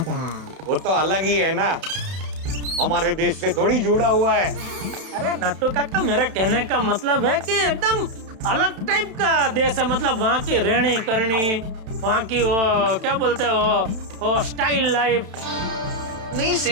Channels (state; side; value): late; left; 31 ms